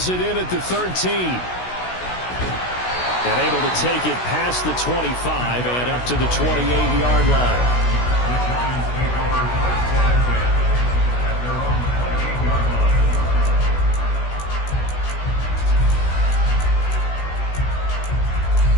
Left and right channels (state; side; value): late; right; 16 ms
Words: it in at the 13. And able to take it past the 25 and up to the 28-yard line.